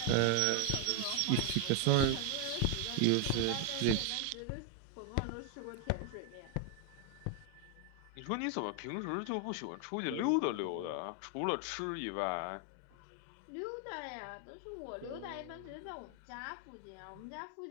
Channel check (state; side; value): different; both; correlation 0.00